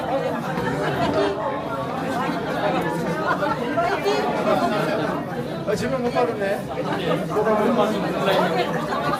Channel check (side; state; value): both; identical; correlation 1.00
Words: 질문 못 받았네.